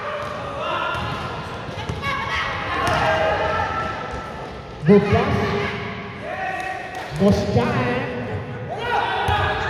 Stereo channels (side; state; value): both; identical; correlation 1.00